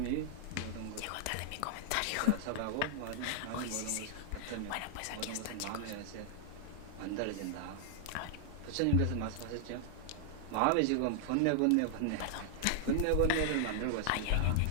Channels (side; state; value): both; different; correlation -0.01